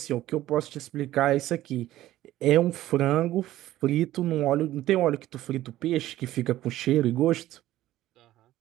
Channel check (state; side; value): quieter; left; 14.7 dB